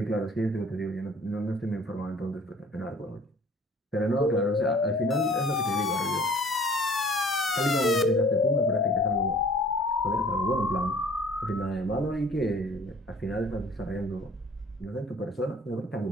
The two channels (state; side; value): normal; both; correlation 0.51